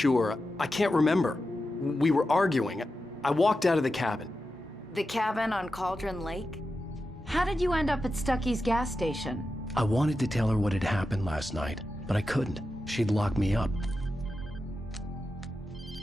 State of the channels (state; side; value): normal; both; correlation 0.90